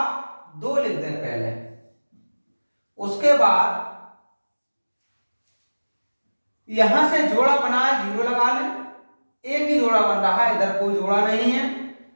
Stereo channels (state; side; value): inverted; both; correlation -1.00